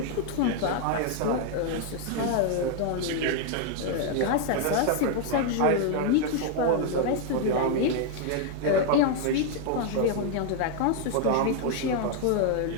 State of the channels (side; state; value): both; different; correlation 0.00